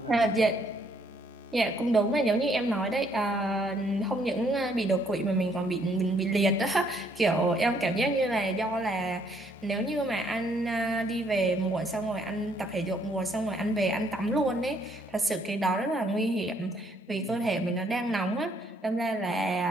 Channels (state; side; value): normal; both; correlation 0.68